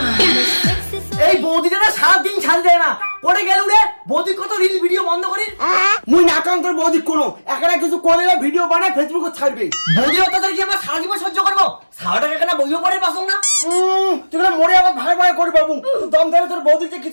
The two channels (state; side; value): inverted; both; correlation -1.00